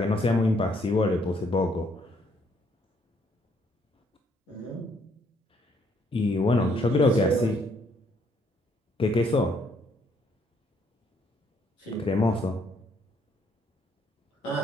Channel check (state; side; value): normal; both; correlation 0.69